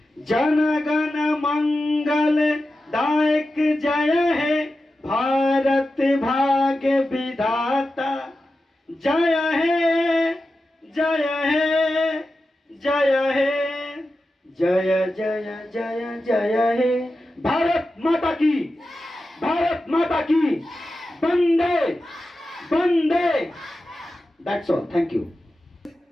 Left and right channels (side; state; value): both; normal; correlation 0.92